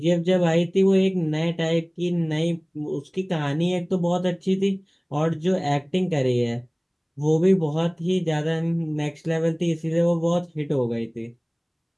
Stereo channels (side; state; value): both; identical; correlation 1.00